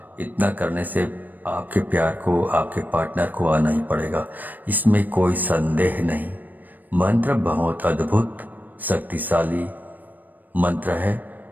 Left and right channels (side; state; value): left; late; 0.087 ms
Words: इतना करने से आपके प्यार को, आपके पार्टनर को आना ही पड़ेगा, इसमें कोई संदेह नहीं। मंत्र बहुत अद्भुत, शक्तिशाली मंत्र है